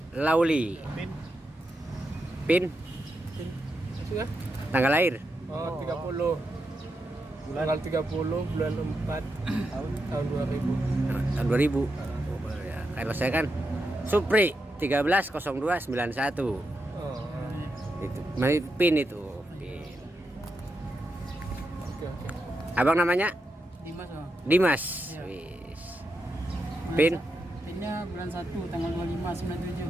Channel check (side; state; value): both; normal; correlation 0.85